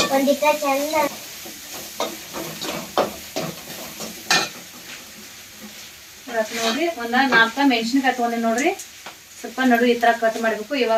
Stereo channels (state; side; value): identical; both; correlation 1.00